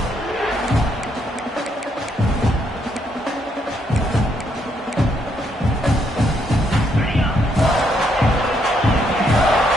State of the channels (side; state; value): both; normal; correlation 0.74